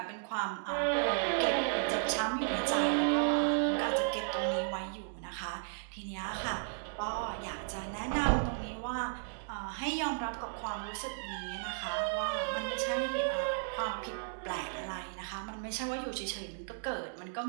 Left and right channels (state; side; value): silent; left; digital silence